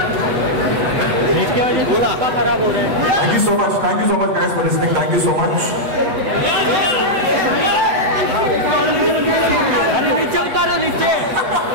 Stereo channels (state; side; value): late; left; 8.2 ms